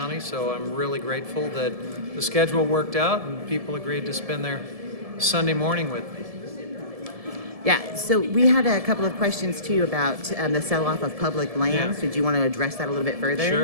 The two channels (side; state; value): left; late; 1.7 ms